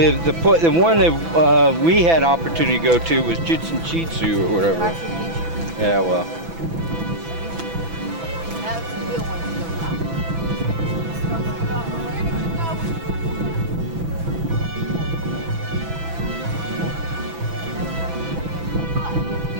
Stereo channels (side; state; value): left; late; 6.0 ms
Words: one that we had opportunity to go to was Chichen Itza or whatever. Yeah, well. That's the real one.